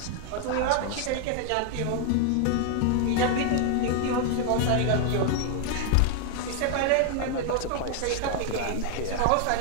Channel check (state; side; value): different; both; correlation 0.00